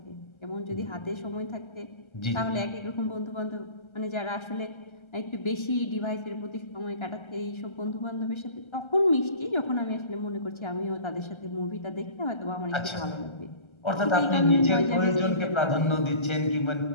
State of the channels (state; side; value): late; right; 1.3 ms